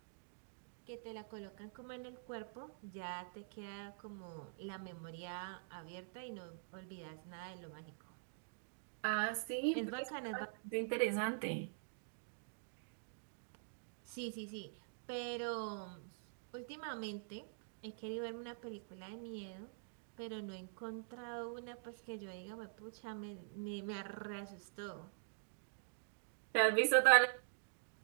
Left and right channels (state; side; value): silent; left; digital silence